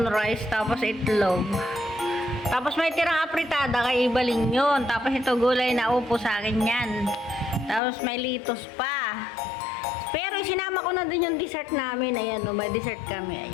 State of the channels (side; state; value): right; drops out; at 7.8 s